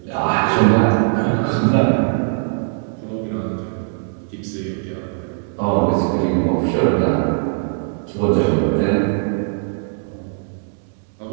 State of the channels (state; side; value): silent; left; digital silence